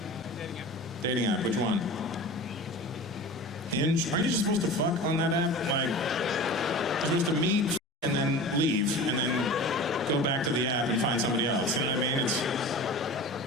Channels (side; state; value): both; normal; correlation 0.35